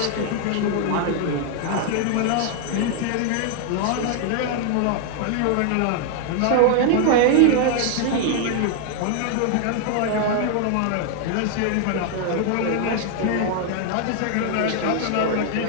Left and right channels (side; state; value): both; different; correlation 0.00